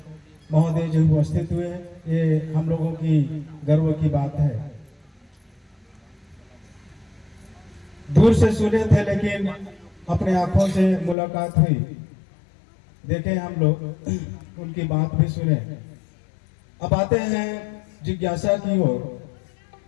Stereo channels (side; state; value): right; drops out; at 11.2 s